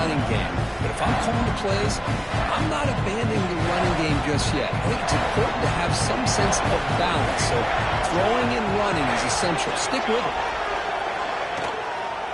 game. But if I'm calling the plays, I'm not abandoning the running game just yet. I think it's important to have some sense of balance. So throwing and running is essential. Stick with it.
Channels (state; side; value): identical; both; correlation 1.00